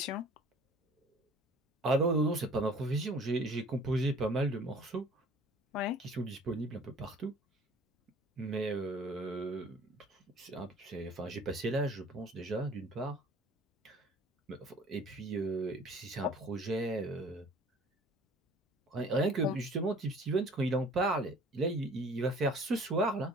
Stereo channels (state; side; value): normal; both; correlation 0.50